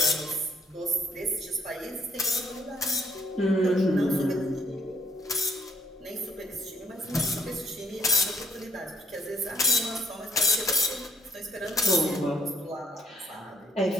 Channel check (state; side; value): normal; both; correlation 0.68